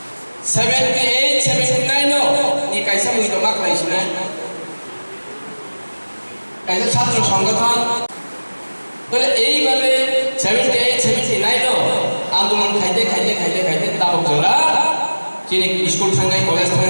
78, 79 no, ni kaisa muito mak laisna. Kaisa ছাত্র সংগঠন বলে এইভাবে 78, 79 no আন্দোলন খাইতে তাবক জোড়া চিনি স্কুল থাঙ্গাই কলেজ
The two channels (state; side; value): inverted; both; correlation -1.00